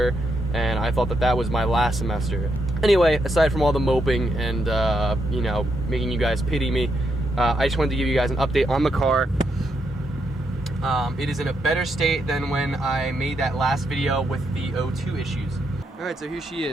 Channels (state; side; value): normal; both; correlation 0.80